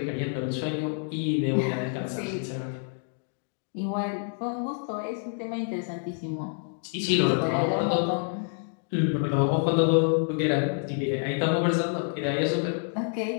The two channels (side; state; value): right; silent; 60 dB below the other